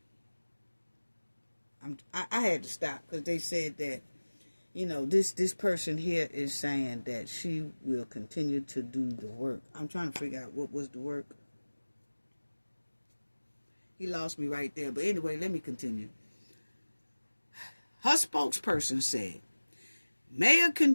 I had to stop because they said that, you know, this person here is saying that she will continue to do the work. I'm trying to figure out what was the work. He lost me right there. But anyway, let me continue. Her spokesperson said, Mayor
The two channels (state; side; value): inverted; both; correlation -1.00